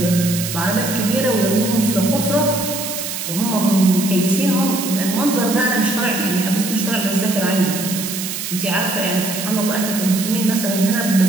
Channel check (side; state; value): right; noise; hiss, 5 dB below the sound